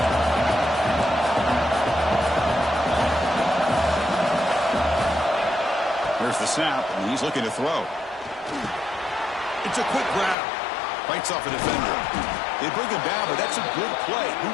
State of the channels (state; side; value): drops out; right; at 10.4 s